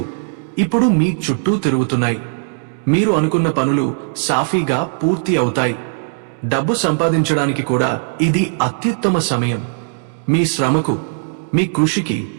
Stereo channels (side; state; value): left; silent; digital silence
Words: ఇప్పుడు మీ చుట్టూ తిరుగుతున్నాయి. మీరు అనుకున్న పనులు సాఫీగా పూర్తి అవుతాయి. డబ్బు సంపాదించడానికి కూడా ఇది అత్యుత్తమ సమయం. మీ శ్రమకు, మీ కృషికి